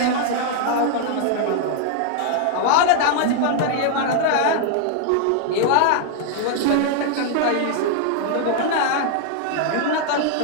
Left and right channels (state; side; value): different; both; correlation 0.00